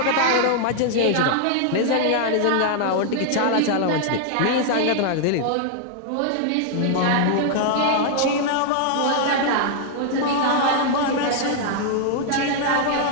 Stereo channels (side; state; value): both; different; correlation 0.00